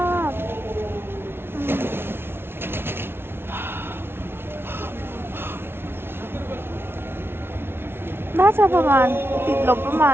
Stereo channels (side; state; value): left; late; 0.11 ms